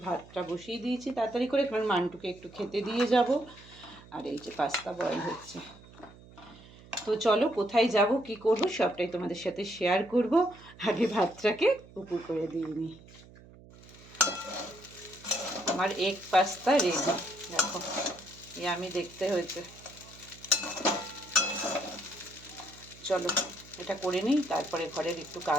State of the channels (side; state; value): right; noise; hum, 21 dB below the sound